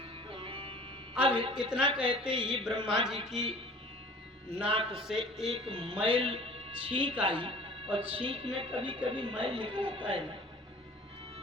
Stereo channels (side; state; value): both; normal; correlation 0.46